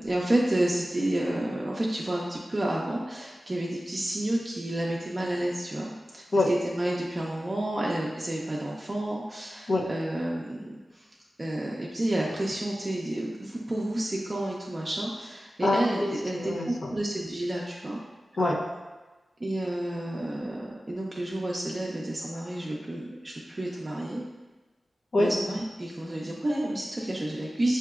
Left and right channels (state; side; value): normal; both; correlation 0.95